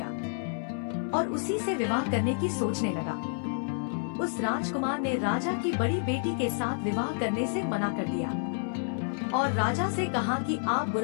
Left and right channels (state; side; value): silent; right; 58 dB below the other